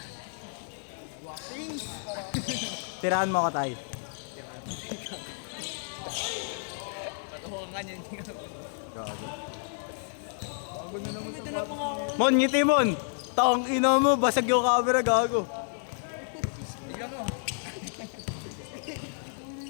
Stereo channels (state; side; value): silent; right; digital silence